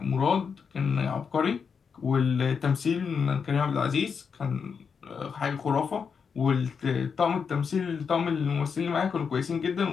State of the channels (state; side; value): quieter; right; 6.1 dB